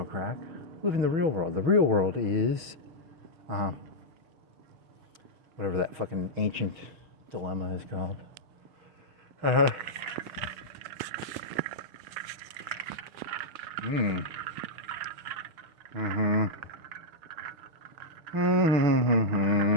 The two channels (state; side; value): late; left; 6.2 ms